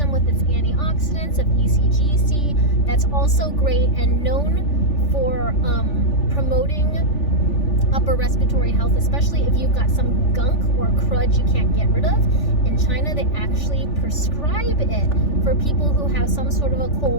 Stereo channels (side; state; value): right; late; 3.4 ms